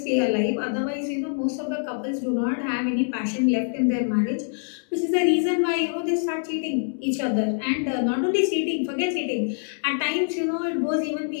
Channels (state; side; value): silent; right; digital silence